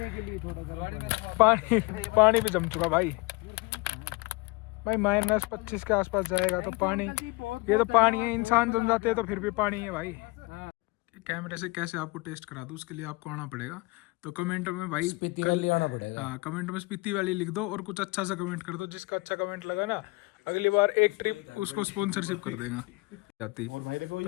पानी भी जम चुका भाई। भाई -25 के आसपास जाएगा तो पानी, ये तो पानी है, इंसान जम जाते हैं तो फिर भी पानी है भाई। कैमरे से कैसे आपको टेस्ट करा दूं, उसके लिए आपको आना पड़ेगा। तो कमेंट में भाई कल आना पड़ेगा। हाँ, कमेंट में स्पीति वाली लिख दो और कुछ अच्छा सा कमेंट कर दो। जिसका अच्छा कमेंट लगा ना, अगली बार एक ट्रिप उसको स्पॉन्सरशिप कर देगा जाती। और भाई देखो,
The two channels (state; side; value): quieter; right; 24.8 dB